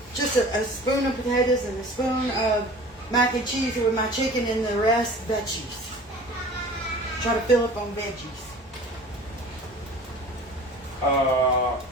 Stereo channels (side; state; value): both; normal; correlation 0.43